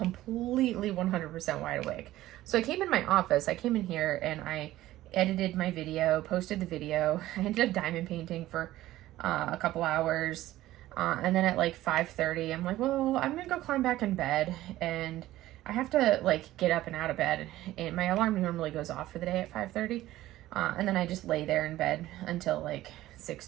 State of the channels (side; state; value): left; quieter; 15.4 dB